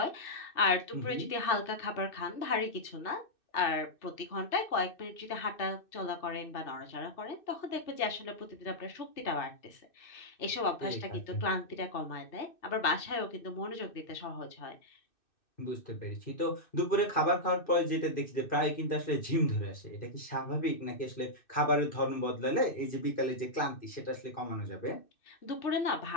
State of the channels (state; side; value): late; right; 2.6 ms